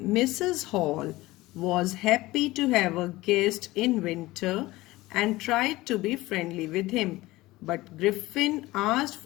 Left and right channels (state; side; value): quieter; right; 18.9 dB